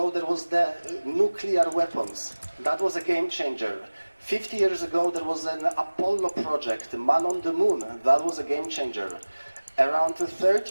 there was the nuclear weapons. That was a game changer. 50 years ago there was an Apollo project, Man on the Moon. That was a game changer. Around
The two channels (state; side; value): inverted; both; correlation -1.00